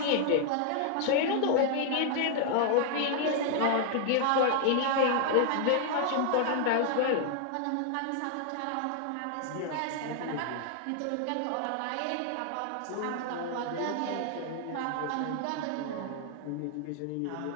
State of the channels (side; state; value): both; different; correlation 0.00